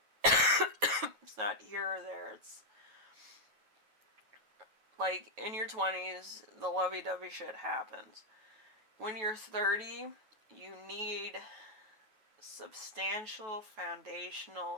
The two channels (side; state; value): left; late; 9.3 ms